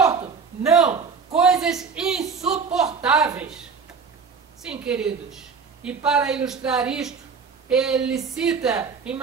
Não, coisas insuportáveis. Sim, queridos, e para ilustrar isto, ele cita em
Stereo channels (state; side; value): quieter; left; 5.5 dB